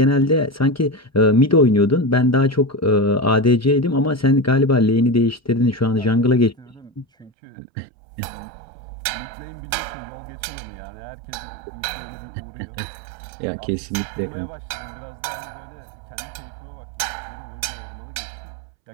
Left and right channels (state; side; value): drops out; left; at 7.3 s